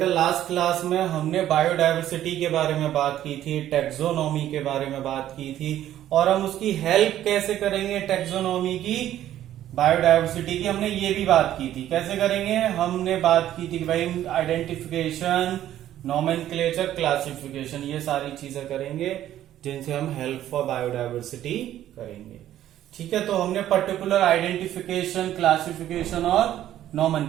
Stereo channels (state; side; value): quieter; left; 12.3 dB